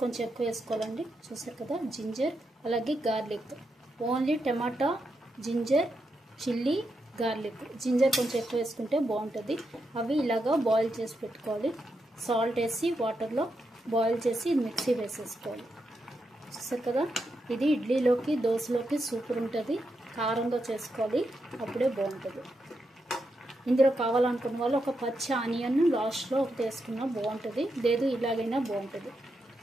కొంచెం ఎక్కువ వేసుకోవాలండి. చూసారు కదా, జింజర్ అలాగే garlic. Only tomato, ginger, chilli, garlic. Ginger కొంచెం ఎక్కువ వేసుకుంటే బాగుంటుంది. అవి ఇలాగా బాయిల్ చేసి పెట్టుకోవాలి. సాల్ట్ వేసి వాటర్లో బాయిల్ చేసి మిక్సీ వేసేసుకోవాలి. చూసారు కదా, ఇది ఇడ్లీలోకి, దోశలోకి సూపర్ ఉంటుంది. కారంగా చేసుకోవాలి, అప్పుడే బాగుంటుంది. ఇందులో కావాలనుకున్న వాళ్ళు ఒక పచ్చి ఆనియన్ లాస్ట్లో ఒకటి వేసుకున్నా బాగుంటుంది, లేదు ఇలాగైనా బాగుంటుంది.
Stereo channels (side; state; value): both; normal; correlation 0.84